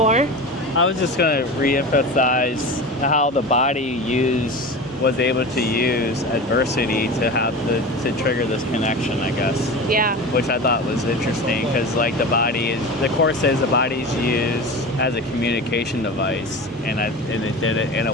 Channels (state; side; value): normal; both; correlation 0.30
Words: I was just going to re-emphasize how the body was able to use adversity to trigger this connection, I guess. Yeah. Which I thought was interesting because, like, the Course says the body's used as a communication device, and it did it in a